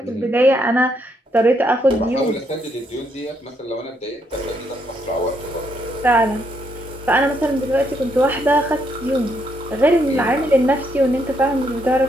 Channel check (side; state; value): both; normal; correlation 0.75